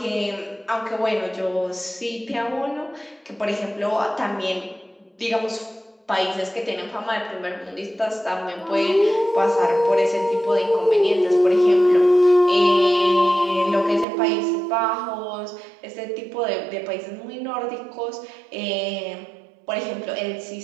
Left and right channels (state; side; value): drops out; left; at 14.1 s